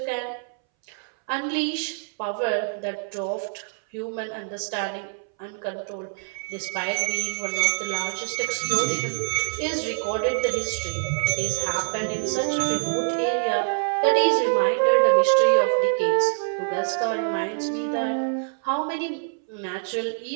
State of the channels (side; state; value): left; silent; 62 dB below the other